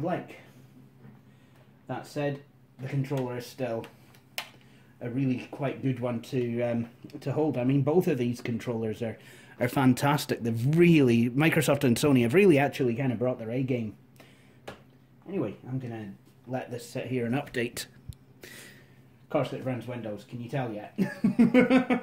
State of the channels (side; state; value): both; identical; correlation 1.00